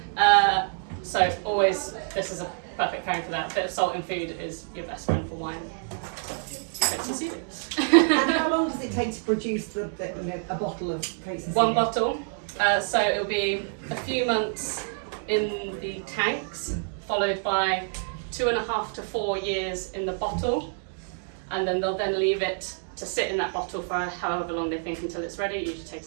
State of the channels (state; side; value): silent; left; 60 dB below the other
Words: So always, this is a perfect pairing for that. A bit of salt in food is your best friend for wine. Coates and Seely. And how long does it take to produce a bottle of Coates and Seely? One bottle. So it'll be a few months in the tanks, followed by 2.5 to 4 years in the bottle. and then they'll then leave it to sit in that bottle for however long they think until it's ready. It usually